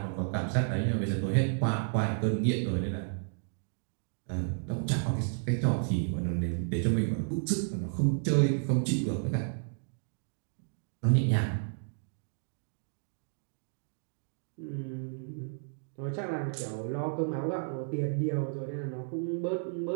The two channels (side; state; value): left; silent; digital silence